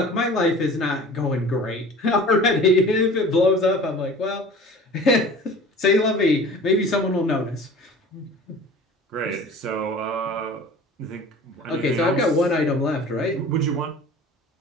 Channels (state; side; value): normal; both; correlation 0.42